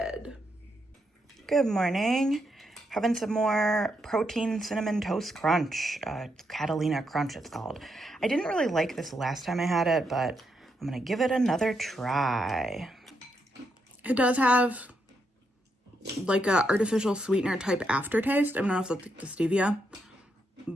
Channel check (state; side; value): normal; both; correlation 0.80